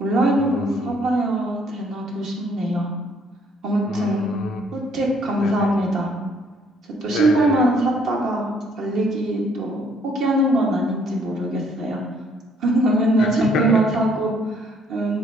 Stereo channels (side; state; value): both; normal; correlation 0.65